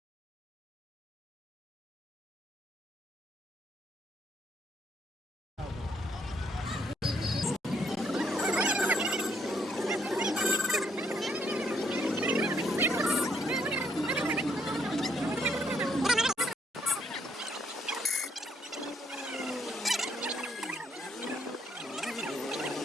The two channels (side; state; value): both; normal; correlation 0.71